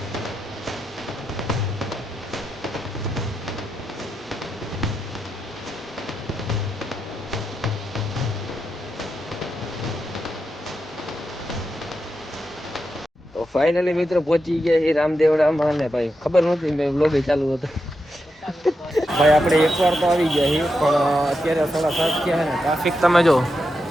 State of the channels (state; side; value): normal; both; correlation 0.87